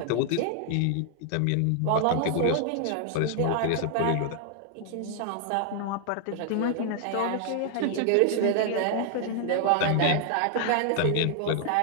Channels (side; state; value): both; different; correlation -0.01